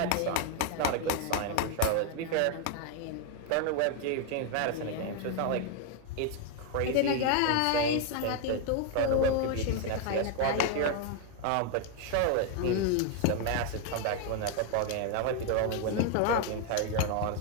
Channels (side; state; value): both; different; correlation 0.01